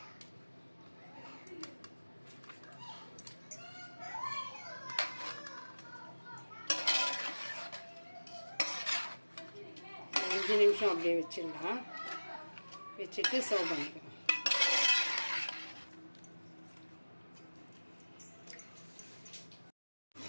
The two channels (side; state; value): both; inverted; correlation -1.00